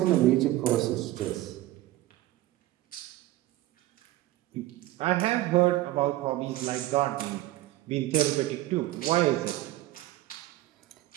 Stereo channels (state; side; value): quieter; left; 16.5 dB